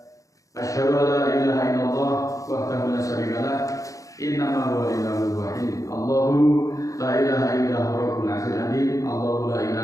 Asyhadu an la ilaha illallah wahdahu la syarika lah, innama huwa ilahul wahid. Allahu la ilaha illa huwa rabbul 'arsyil 'azim. Allahu la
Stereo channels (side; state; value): right; late; 0.16 ms